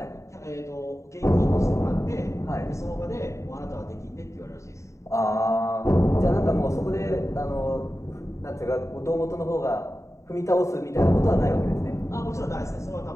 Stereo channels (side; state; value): right; late; 0.14 ms